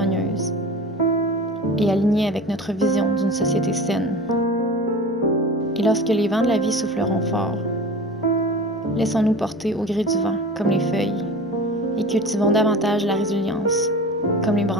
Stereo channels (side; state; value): both; normal; correlation 0.35